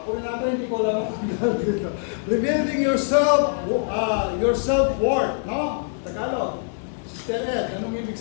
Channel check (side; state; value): right; silent; 63 dB below the other